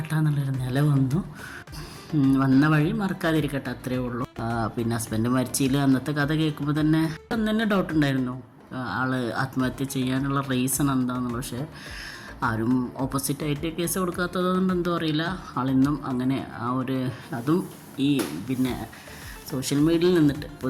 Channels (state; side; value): identical; both; correlation 1.00